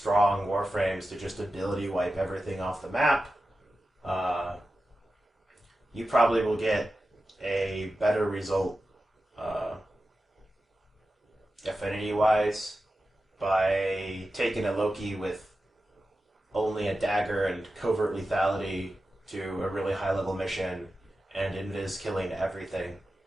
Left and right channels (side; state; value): both; normal; correlation 0.92